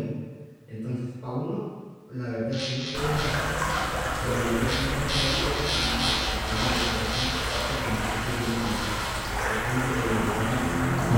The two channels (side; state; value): both; identical; correlation 1.00